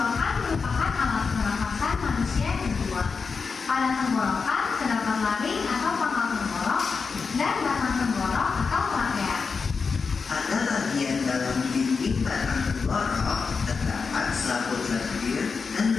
merupakan alat pernafasan manusia yang kedua. Pada tenggorokan terdapat laring atau pangkal tenggorok dan batang tenggorok atau trakea. Pada bagian dalam dinding batang tenggorok terdapat selaput lendir dan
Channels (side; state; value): right; quieter; 5.0 dB